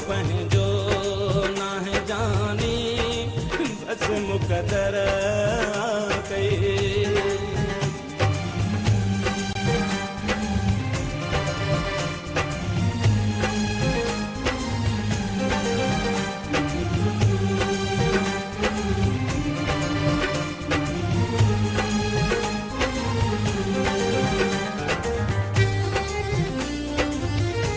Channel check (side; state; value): both; identical; correlation 1.00